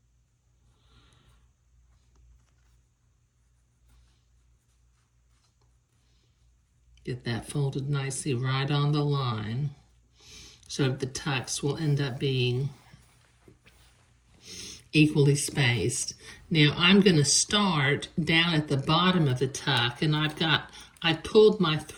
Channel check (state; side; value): identical; both; correlation 1.00